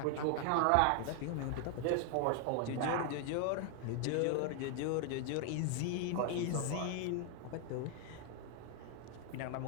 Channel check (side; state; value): both; different; correlation 0.00